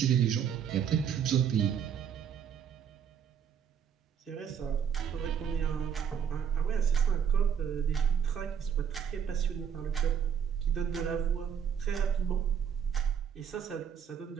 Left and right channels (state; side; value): quieter; left; 7.9 dB